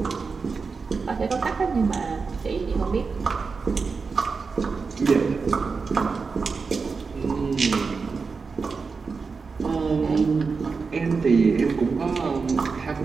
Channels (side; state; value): left; quieter; 4.8 dB